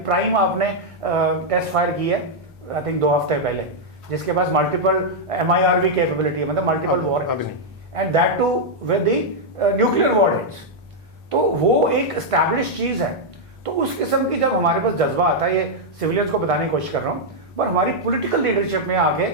प्राइम आपने टेस्ट फायर की है आई थिंक 2 हफ्ते पहले, जिसके पास मल्टीपल MIRV कैपेबिलिटी है, मतलब multiple warheads, and that too with the nuclear warheads. तो वो एक एस्टैब्लिश चीज है। तो उस किस्म की जब हमारे पास जज्बा आता है, ये सिविलियंस को बताने की कोशिश कर रहा हूँ, पर हमारी पॉलिटिकल लीडरशिप में आके,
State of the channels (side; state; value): both; normal; correlation -0.03